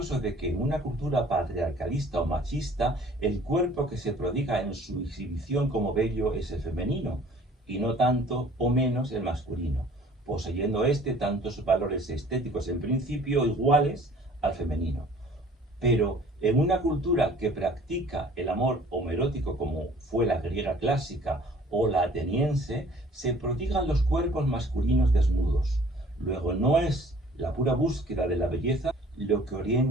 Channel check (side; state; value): both; normal; correlation 0.53